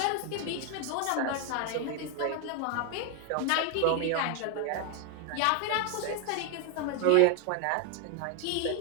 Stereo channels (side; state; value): both; different; correlation 0.01